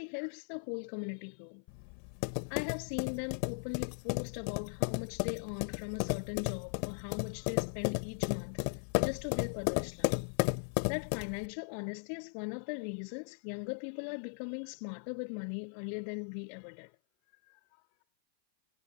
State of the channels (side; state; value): right; silent; 52 dB below the other